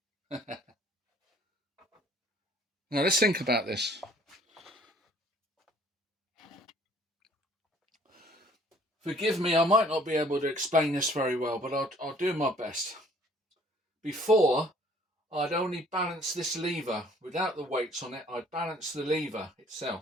Now let's think about this. Forgive me, I might not be able to explain this very well, but I'll do my best. Before, I'd only balance this lever. Without the weights on it, I'd balance the lever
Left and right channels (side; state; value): both; normal; correlation 0.57